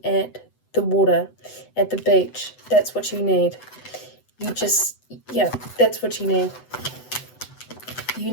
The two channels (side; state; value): right; late; 7.9 ms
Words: at the water, at the beach. That's what you need. Yeah, that's what you need. You